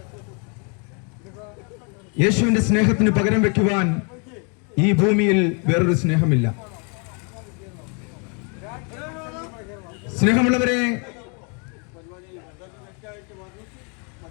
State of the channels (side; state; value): right; quieter; 36.7 dB